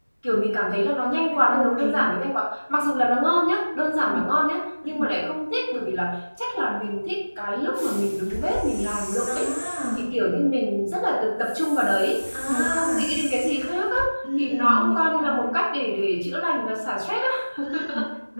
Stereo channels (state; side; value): inverted; both; correlation -1.00